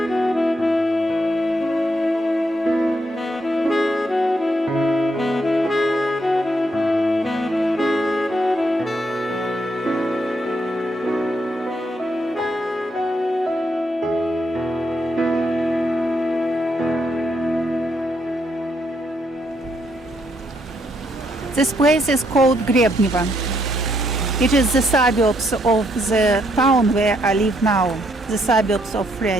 This place is called Grebnevo. It is the suburbs of the town where I live now, the suburbs of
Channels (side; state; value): both; normal; correlation 0.74